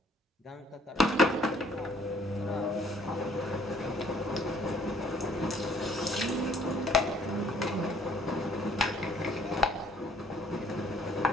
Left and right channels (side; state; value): both; normal; correlation 0.61